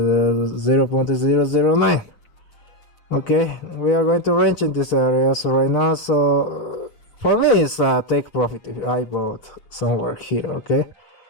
Okay, we are going to range in this area so right now, so for me it's take profit if I bought somewhere here, okay.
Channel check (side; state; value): right; late; 6.7 ms